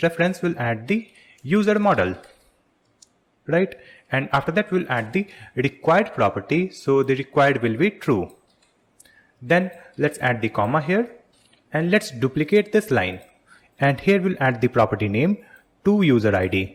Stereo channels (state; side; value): identical; both; correlation 1.00